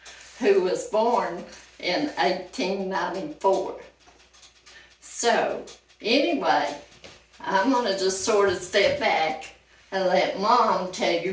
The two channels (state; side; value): identical; both; correlation 1.00